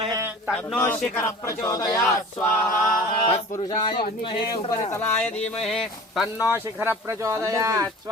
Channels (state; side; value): normal; both; correlation 0.41